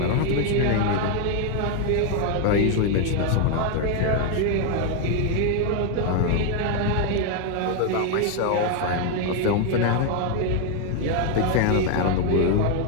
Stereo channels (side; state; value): both; different; correlation 0.01